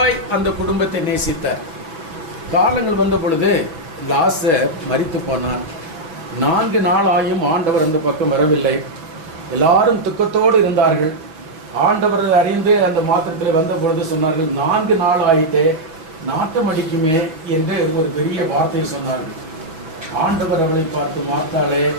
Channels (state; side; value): late; left; 6.1 ms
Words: அந்த குடும்பத்தை நேசித்தார். காலங்கள் வந்த பொழுது லாசர் மரித்து போனான். 4 நாள் ஆயும் ஆண்டவர் அந்த பக்கம் வரவில்லை. எல்லாரும் துக்கத்தோடு இருந்தார்கள். ஆண்டவர் அறிந்து அந்த மாத்திரத்தில் வந்த பொழுது சொன்னார்கள், 4 நாள் ஆயிட்டே நாட்டம் அடிக்குமே என்று ஒரு பெரிய வார்த்தை சொன்னார்கள். ஆண்டவர் அவளை பார்த்து, மார்த்தாளே